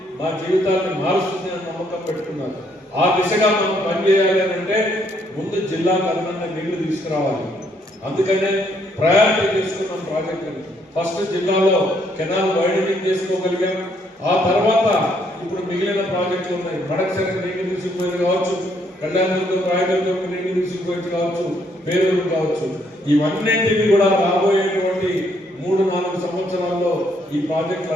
మా జీవితాన్ని మారుస్తుంది అని నమ్మకం పెట్టుకున్నారు. ఆ దిశగా మనం పనిచేయాలి అని అంటే ముందు జిల్లాకు అదనంగా నీళ్లు తీసుకురావాలి. అందుకనే ప్రయారిటీ తీసుకున్నాం ప్రాజెక్టులు. ఫస్ట్ జిల్లాలో కెనాల్ వైడనింగ్ చేసుకోగలిగాం. ఆ తర్వాత ఇప్పుడు మిగిలిన ప్రాజెక్టులు ఉన్నాయి. మడకసరి నీళ్లు తీసుకుపోయేది కావచ్చు, కళ్యాణదుర్గం రాయదుర్గం నీళ్లు తీసుకుపోయేది కావచ్చు, పేరూరు కావచ్చు. ఇవన్నింటినీ కూడా రాబోయేటువంటి 3-4 సంవత్సరాల్లో ఈ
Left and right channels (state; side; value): normal; both; correlation 0.70